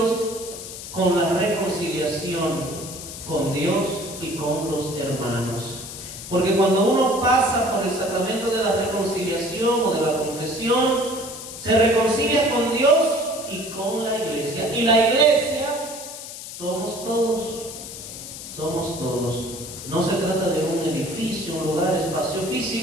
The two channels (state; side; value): noise; left; hiss, 11 dB below the sound